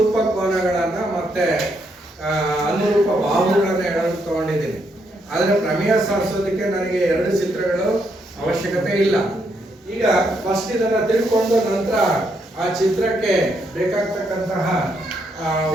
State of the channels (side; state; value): both; normal; correlation 0.76